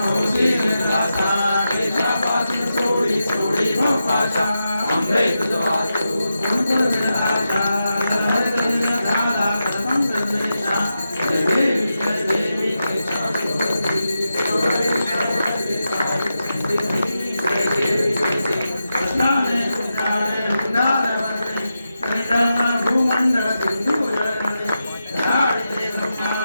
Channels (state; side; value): inverted; both; correlation -0.89